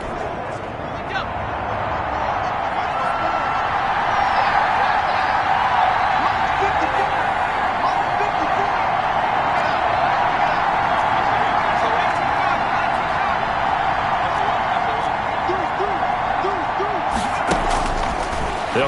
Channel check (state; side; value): identical; both; correlation 1.00